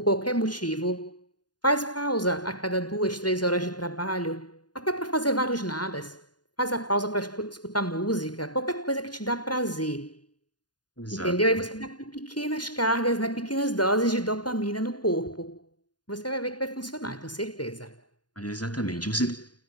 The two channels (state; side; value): late; right; 0.70 ms